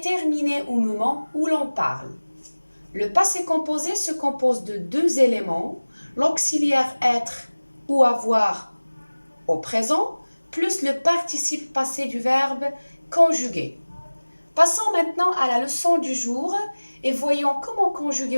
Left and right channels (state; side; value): inverted; both; correlation -1.00